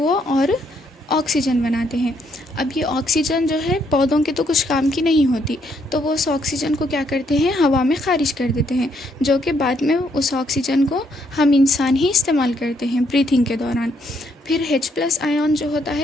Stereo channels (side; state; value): both; normal; correlation 0.73